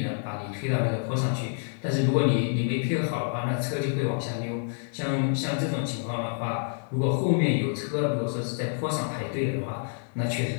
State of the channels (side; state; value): right; silent; 60 dB below the other